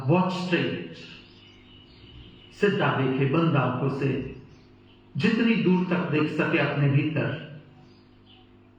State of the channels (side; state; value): both; identical; correlation 1.00